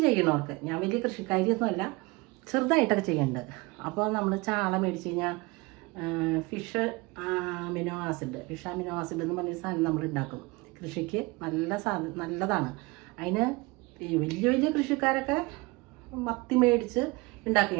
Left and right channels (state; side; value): quieter; left; 24.3 dB